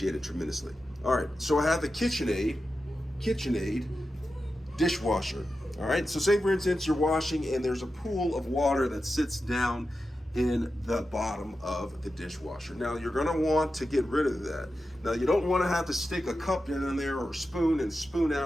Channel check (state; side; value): normal; both; correlation 0.91